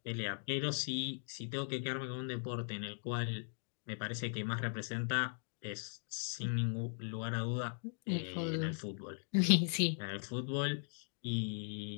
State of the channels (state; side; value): silent; right; digital silence